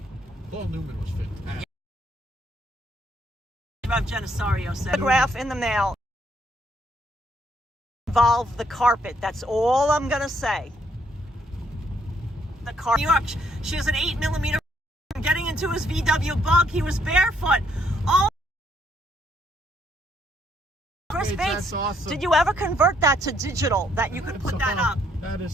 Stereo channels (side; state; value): both; normal; correlation 0.70